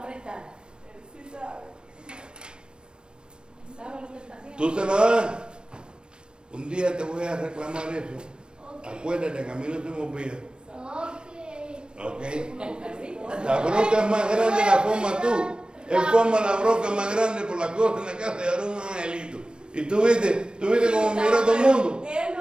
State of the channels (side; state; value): left; late; 0.049 ms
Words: prestar. Él sí sabe. ¿Sabe lo que está haciendo? ¿Tú se la das? Un día te voy a reclamar eso. Ok. Acuérdate que a mí no se me olvida. Ok. ¿Ok? La bronca es más grande la forma tú. Él forma la bronca más grande por la cosa en la casa y ahora un angelito. Y tú viste cómo miró todo el mundo. Él